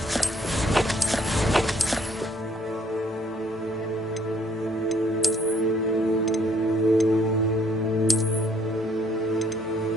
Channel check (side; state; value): both; normal; correlation 0.64